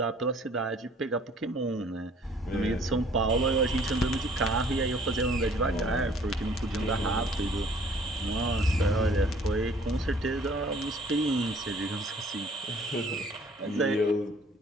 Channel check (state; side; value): normal; both; correlation 0.56